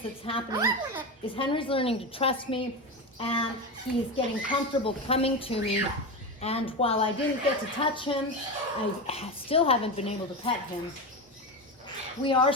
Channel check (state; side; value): normal; both; correlation 0.19